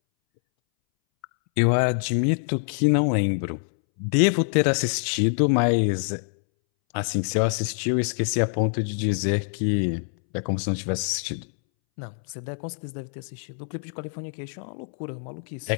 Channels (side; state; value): right; silent; 62 dB below the other